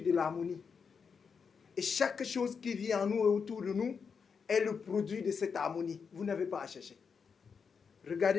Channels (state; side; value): quieter; right; 5.9 dB